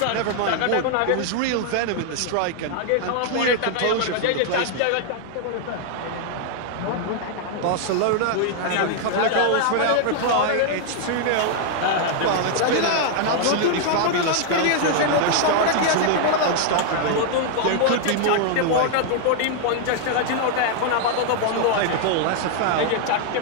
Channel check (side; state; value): both; different; correlation 0.00